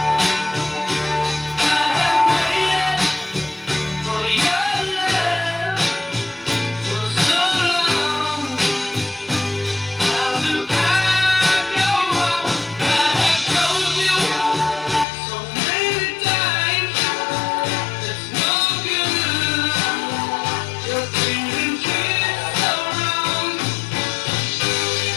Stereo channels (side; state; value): right; drops out; at 15.1 s